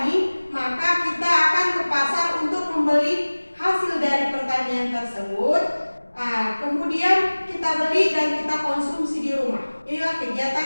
maka kita akan ke pasar untuk membeli hasil dari pertanian tersebut. Kemudian kita beli dan kita konsumsi di rumah. Inilah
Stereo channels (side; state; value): both; inverted; correlation -1.00